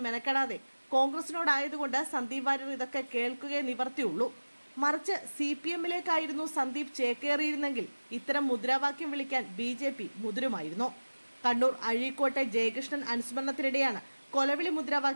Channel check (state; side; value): inverted; both; correlation -1.00